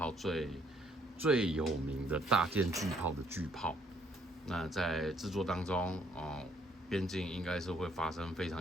最有名的大舰巨炮的巨炮。那在制作当中，边境应该是会发生非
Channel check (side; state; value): both; normal; correlation 0.66